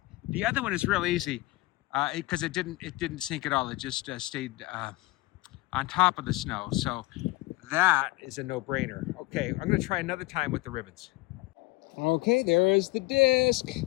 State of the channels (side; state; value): right; quieter; 21.2 dB